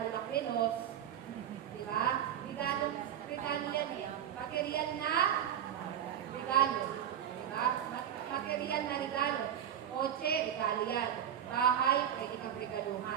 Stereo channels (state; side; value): quieter; left; 9.8 dB